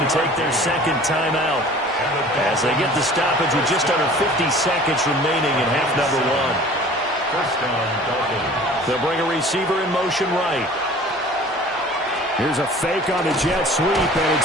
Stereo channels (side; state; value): right; noise; hum, 29 dB below the sound